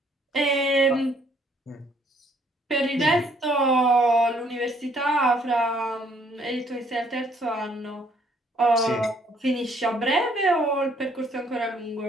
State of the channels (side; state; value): both; normal; correlation 0.65